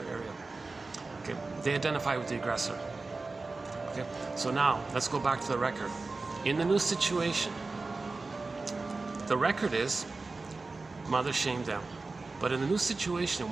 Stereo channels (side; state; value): left; quieter; 3.7 dB